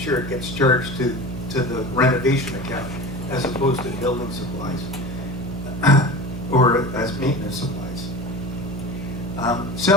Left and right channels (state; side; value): noise; right; hum, 9 dB below the sound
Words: it gets charged to the renovation account as opposed to building supplies or as maintenance supplies.